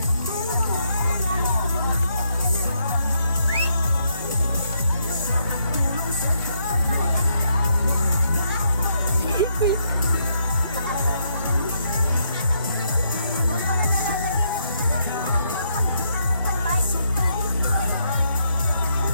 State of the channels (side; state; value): both; inverted; correlation -0.76